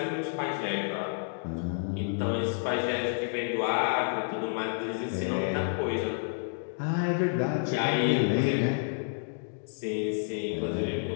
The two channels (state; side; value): silent; right; digital silence